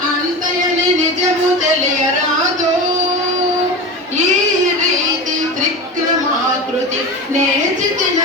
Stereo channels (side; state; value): both; normal; correlation 0.27